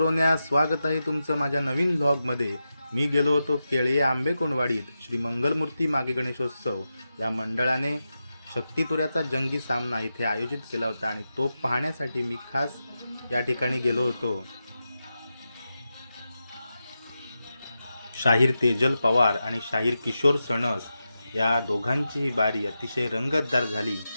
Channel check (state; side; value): inverted; both; correlation -0.90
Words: स्वागत आहे तुमचं माझ्या नवीन व्लॉगमध्ये। मी गेलो होतो केळी आंबे कोणवाडीत श्री मंगलमूर्ती मागे गणेशोत्सव या मंडळाने शक्तितुऱ्याचा जंगी सामना इथे आयोजित केला होता आणि तो पाहण्यासाठी मी खास या ठिकाणी गेलो होतो। शाहीर तेजल पवार आणि शाहीर किशोर सणस या दोघांची बारी अतिशय रंगतदार झाली।